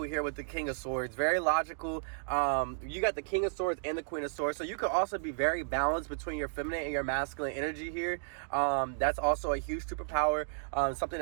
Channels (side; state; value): left; silent; digital silence